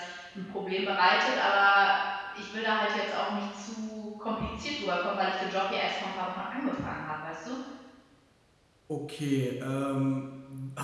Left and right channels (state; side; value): identical; both; correlation 1.00